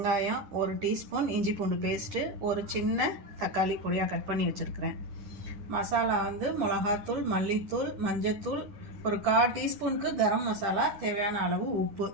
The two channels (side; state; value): left; late; 9.7 ms